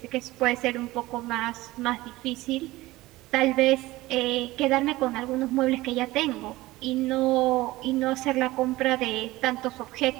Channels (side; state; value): left; quieter; 18.5 dB